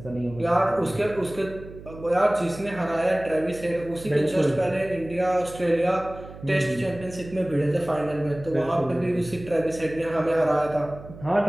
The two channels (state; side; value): noise; right; hum, 16 dB below the sound